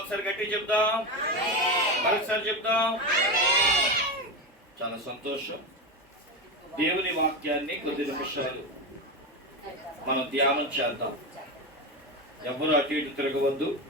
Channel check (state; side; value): normal; both; correlation 0.17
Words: గట్టి చెప్దాం, మరొకసారి చెప్దాం. చాలా సంతోషం. దేవుని వాక్యాన్ని కొద్ది నిమిషాలు మనం ధ్యానం చేద్దాం. ఎవరు అటు ఇటు తిరగవద్దు.